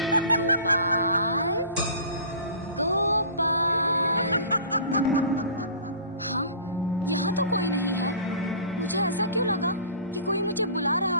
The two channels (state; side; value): inverted; both; correlation -0.42